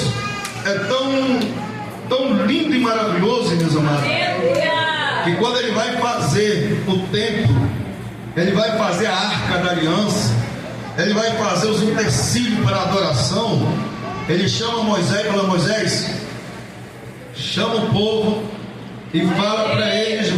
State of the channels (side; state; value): both; identical; correlation 1.00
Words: é tão lindo e maravilhoso, meus amados, que quando Ele vai fazer o templo, Ele vai fazer a arca da aliança, Ele vai fazer os utensílios para a adoração. Ele chama Moisés e fala: Moisés, chama o povo e fala para eles